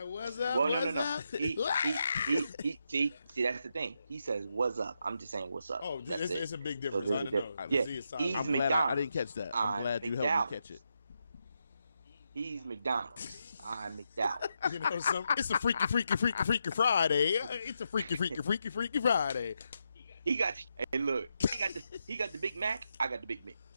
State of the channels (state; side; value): inverted; both; correlation -0.83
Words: "What's up? Well, what's no. up?" See, that's the thing. He says, "What's up?" I'm just saying, "What's up?" Oh, That's it. it's a big difference. So I don't know. Yeah, See his side. he's I'm glad I didn't catch that. I'm glad you helped me catch it. He's McDonald's. I'm McDowell. You know, it's a freaky Friday. It's a freaky Friday. He got. Hey, look. He got the Big Mac. I got the Big Mac.